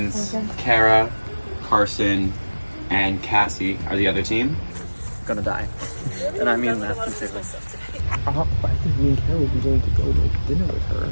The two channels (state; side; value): inverted; both; correlation -1.00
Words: Kara, Carson, and Cassie are the other team. Gonna die. And I mean that sincerely. I think me and Kara will be going to go to dinner with her.